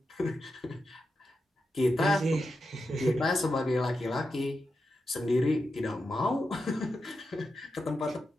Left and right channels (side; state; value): both; normal; correlation 0.88